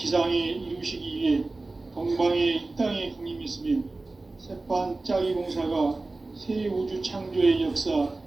이루시기 위해 동방의 이 땅에 강림했으며 새판짜기 공사가 새 우주 창조의 역사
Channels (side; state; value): left; quieter; 3.2 dB